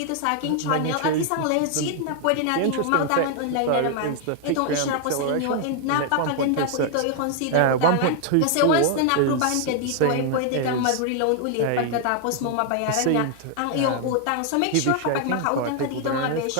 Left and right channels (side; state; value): both; different; correlation 0.00